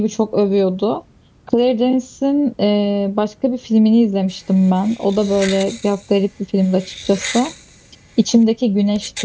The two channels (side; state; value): both; identical; correlation 1.00